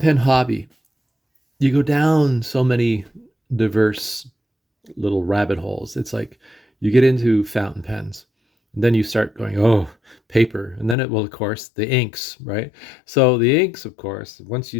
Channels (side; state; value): right; drops out; at 11.0 s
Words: hobby, you go down so many diverse little rabbit holes. It's like you get into fountain pens, and then you start going, oh, paper, and then of course, the inks, right? So the inks, of course, once you